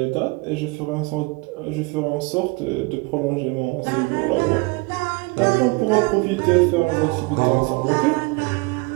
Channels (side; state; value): left; quieter; 26.4 dB